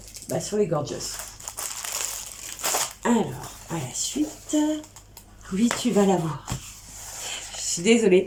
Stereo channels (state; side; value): identical; both; correlation 1.00